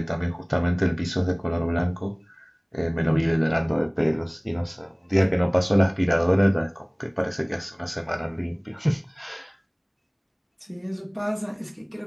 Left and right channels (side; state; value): both; identical; correlation 1.00